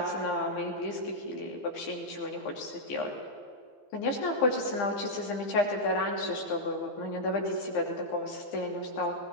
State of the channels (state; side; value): late; right; 15 ms